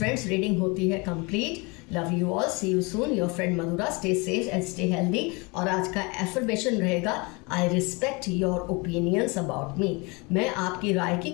रीडिंग होती है complete. Love you all, see you soon, your friend Madhura. Stay safe and stay healthy. और आज का एफर्मेशन रहेगा, I respect your opinions about me. मैं आपकी राय की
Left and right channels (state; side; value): quieter; right; 28.2 dB